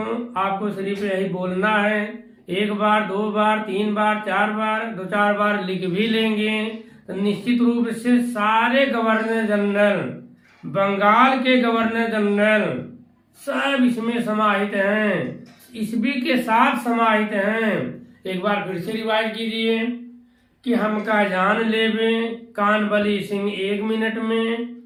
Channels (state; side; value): identical; both; correlation 1.00